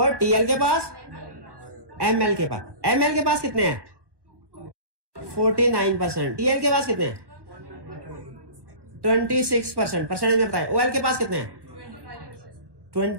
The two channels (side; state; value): left; late; 1.2 ms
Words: टीएल के पास, एमएल के पास। एमएल के पास कितने हैं? 49%। टीएल के पास कितने हैं? 26%। परसेंटेज में बताएं। ओएल के पास कितने हैं?